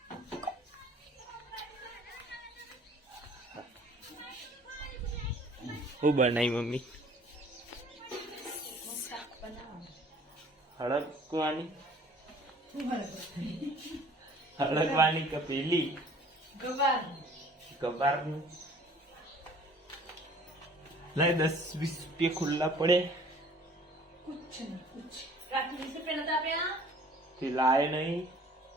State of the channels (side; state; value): both; normal; correlation 0.52